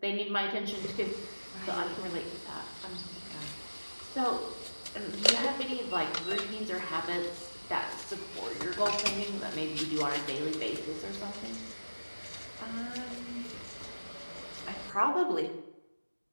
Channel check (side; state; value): both; inverted; correlation -1.00